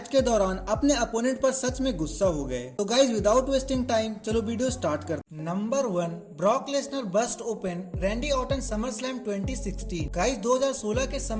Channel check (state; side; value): identical; both; correlation 1.00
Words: के दौरान अपने अपोनेंट पर सच में गुस्सा हो गए। तो गाइज विदाउट वेस्टिंग टाइम चलो वीडियो स्टार्ट करते हैं। Number 1, Brock Lesnar bust open Randy Orton SummerSlam 2016। Guys 2016 के